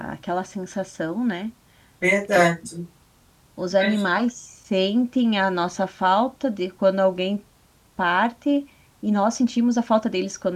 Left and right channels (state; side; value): identical; both; correlation 1.00